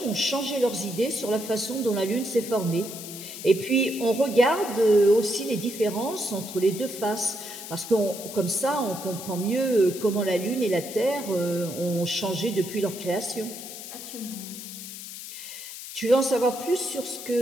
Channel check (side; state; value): left; noise; hiss, 11 dB below the sound